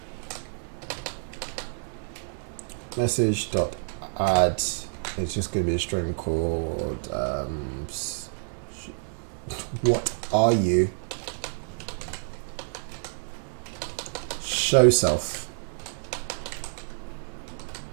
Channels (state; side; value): silent; left; 59 dB below the other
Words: Message dot add. It's just going to be a string called what are you? Show self.